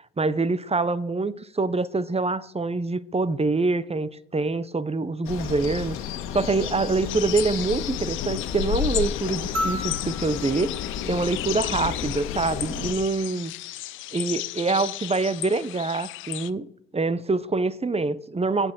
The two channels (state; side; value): normal; both; correlation 0.52